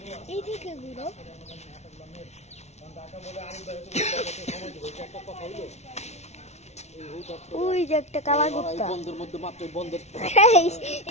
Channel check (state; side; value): late; right; 0.32 ms